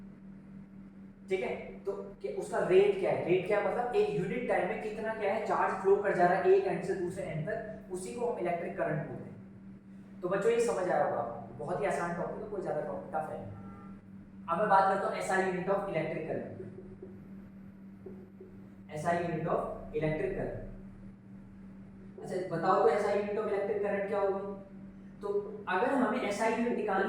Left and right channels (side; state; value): both; identical; correlation 1.00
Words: ठीक है, तो उसका रेट क्या है, रेट क्या है मतलब एक यूनिट टाइम में कितना क्या है चार्ज फ्लो कर जा रहा है एक एंड से दूसरे एंड तक, उसी को हम इलेक्ट्रिक करंट बोलते हैं। तो बच्चों ये समझ आया होगा आपको, बहुत ही आसान टॉपिक है, कोई ज्यादा टॉपिक टफ है। अब मैं बात करता हूं SI unit of electric current. SI unit of electric current, अच्छा बताओ तो SI unit of electric current क्या होगी। तो अगर हमें एसआई यूनिट